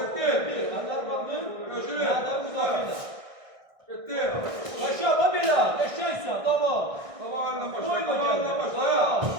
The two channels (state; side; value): late; left; 1.6 ms